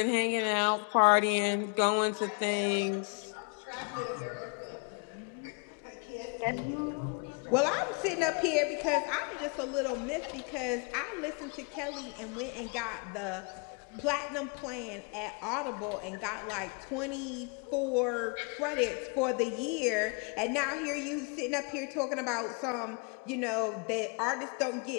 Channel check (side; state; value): right; quieter; 35.4 dB